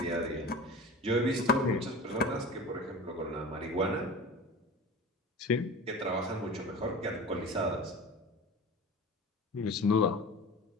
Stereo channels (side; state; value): both; normal; correlation 0.34